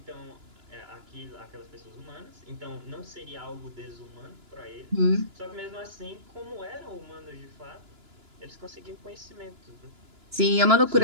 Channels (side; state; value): left; late; 2.9 ms